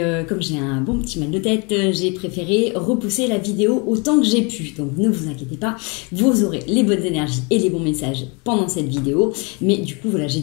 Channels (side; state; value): right; quieter; 31.3 dB